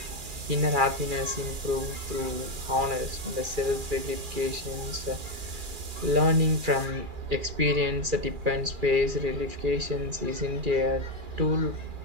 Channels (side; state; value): left; late; 2.4 ms